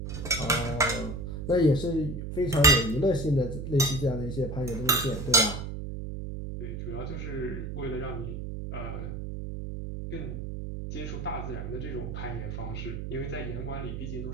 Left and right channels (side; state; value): right; noise; hum, 6 dB below the sound